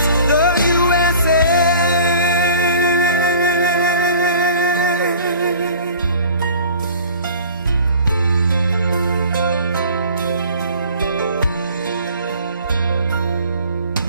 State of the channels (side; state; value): both; inverted; correlation -0.47